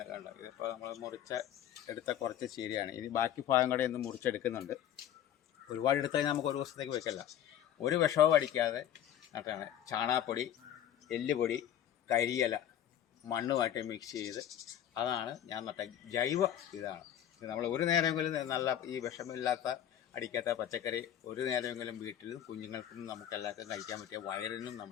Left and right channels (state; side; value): quieter; right; 10.6 dB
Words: കണ്ടത് ഇതിപ്പോൾ നമ്മൾ എടുത്ത കുറച്ച് ചീരയാണ്. ഇനി ബാക്കി ഭാഗം കൂടെ ഇന്ന് മുറിച്ചെടുക്കുന്നുണ്ട്. ഒരുപാട് എടുത്തു കഴിഞ്ഞാൽ നമുക്ക് ഒരു ദിവസത്തേക്ക് വെക്കല്ല. ഒരു വിഷവും അടിക്കാതെ നട്ടാണ്. ചാണകപ്പൊടി, എല്ലുപൊടി, കരിയില മണ്ണുമായിട്ട് മിക്സ് ചെയ്ത് അതാണ് ഞാൻ നട്ട ജൈവ ഇതാണ്. നമ്മൾ ഒരു നേരമെങ്കിലും നല്ല ഈ വിഷമില്ലാത്ത അടിക്കാത്ത പച്ചക്കറി ഒരു നേരമെങ്കിലും വീട്ടിലും കുഞ്ഞുങ്ങൾക്കും നമുക്കെല്ലാവർക്കും കഴിക്കാൻ പറ്റിയ വയറിനും